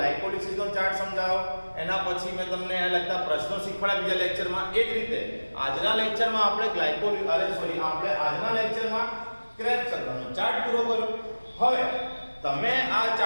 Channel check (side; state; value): both; inverted; correlation -1.00